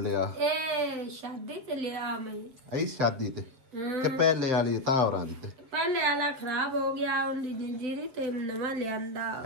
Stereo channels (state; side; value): late; left; 7.7 ms